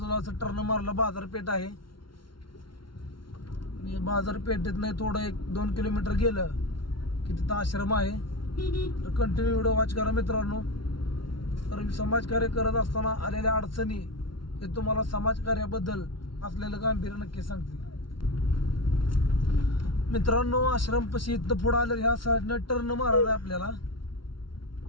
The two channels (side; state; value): right; late; 0.73 ms